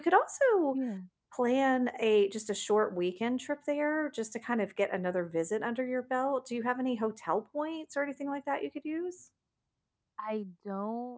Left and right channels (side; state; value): both; identical; correlation 1.00